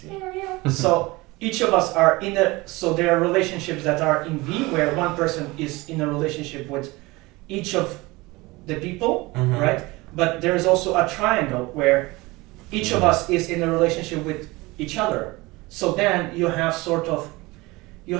So each of us are so there are relationships that are in V where one person is in a relationship with each of the people, Mhm. right? But there is also a triangle where each of us is in a relationship with each other. So then you have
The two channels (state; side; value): quieter; left; 22.3 dB